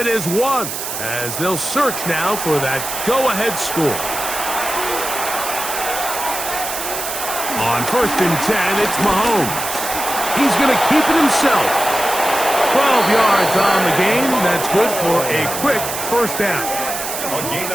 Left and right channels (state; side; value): noise; right; hiss, 5 dB below the sound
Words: is 1 as they'll search now for that go-ahead score. On first and 10, it's Mahomes. He's going to keep it himself. 12 yards on the game. That's good for a quick first down. A gain